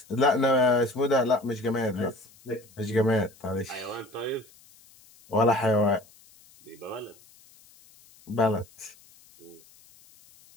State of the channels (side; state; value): left; noise; hiss, 27 dB below the sound